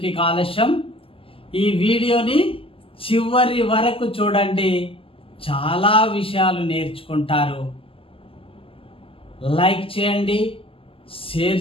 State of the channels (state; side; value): late; right; 0.26 ms